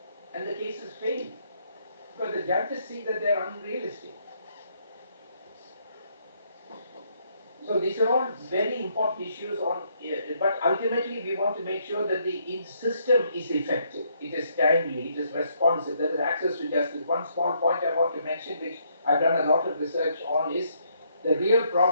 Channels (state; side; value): inverted; both; correlation -0.71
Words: and the cases fail because the judges see that they are unrealistic. So these are all very important issues on, but ultimately we want to make sure that the system is effective, it is timely, it is responsive, there is access to justice. One small point I want to mention, which I've done a lot of research on, is the real